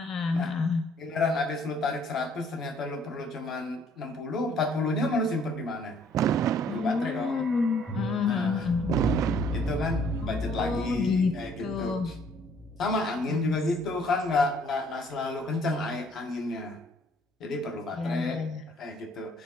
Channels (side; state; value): both; normal; correlation 0.61